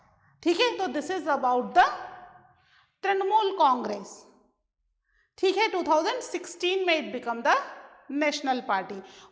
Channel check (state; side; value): identical; both; correlation 1.00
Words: ठीक है, तो this is about the Trinamool Congress. ठीक है, 2016 में it become the national party.